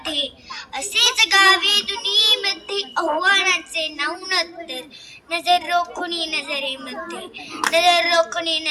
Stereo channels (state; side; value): identical; both; correlation 1.00